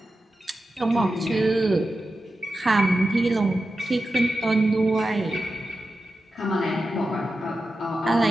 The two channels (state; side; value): normal; both; correlation 0.91